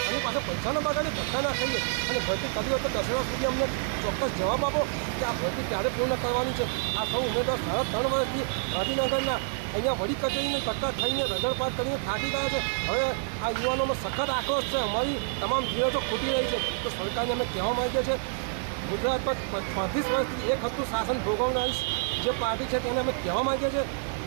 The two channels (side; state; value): left; silent; 59 dB below the other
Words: આની પાસે પૈસા ન બગાડે, ધક્કા ના ખાઈએ અને ભરતી કરી હોય તો 10 વર્ષ સુધી અમને ચોક્કસ જવાબ આપો કે આ ભરતી ક્યારે પૂર્ણ કરવાની છે। આ સૌ ઉમેદવાર 3.5 વર્ષથી ગાંધીનગરના અહીંયા વડી કચેરીને ધક્કા ખાઈને રજળપાત કરીને થાકી ગયા છે। હવે આ યુવાનોમાં સખત આક્રોશ છે, અમારી તમામ ધીરજો ખૂટી રહી છે। તો સરકારને અમે કહેવા માંગીએ છીએ, ગુજરાત પર 35 વર્ષથી એક હતું શાસન ભોગવનારી જે પાર્ટી છે તેને અમે કહેવા માંગીએ છીએ,